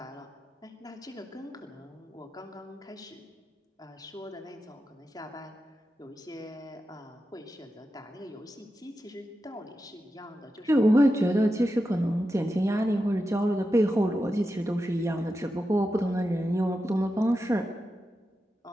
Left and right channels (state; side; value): normal; both; correlation 0.90